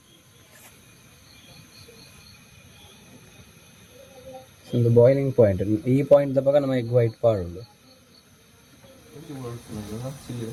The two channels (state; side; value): identical; both; correlation 1.00